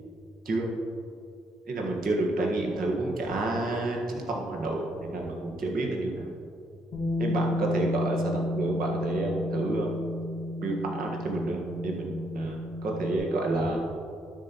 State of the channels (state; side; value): normal; both; correlation 0.73